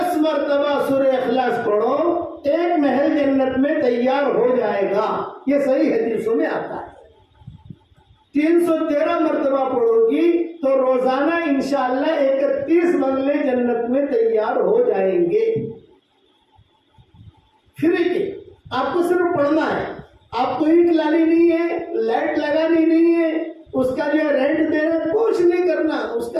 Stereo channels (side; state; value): both; identical; correlation 1.00